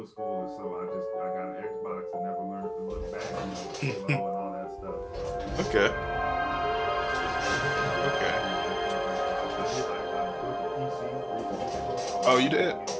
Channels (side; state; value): both; identical; correlation 1.00